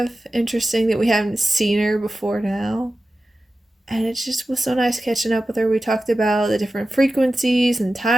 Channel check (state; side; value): normal; both; correlation 0.94